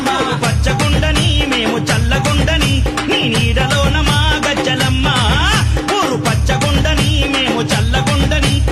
పచ్చగుండని మేము చల్లగుండని నీ నీడలోన మా గజ్జలమ్మ ఊరు పచ్చగుండని మేము చల్లగుండని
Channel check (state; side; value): identical; both; correlation 1.00